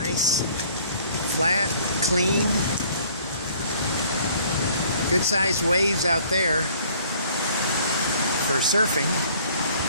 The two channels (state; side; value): inverted; both; correlation -0.56